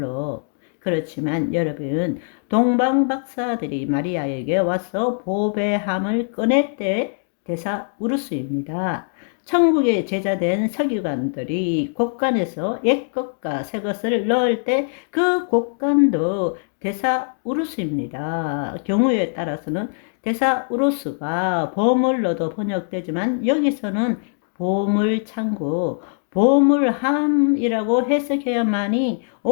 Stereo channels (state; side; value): silent; right; digital silence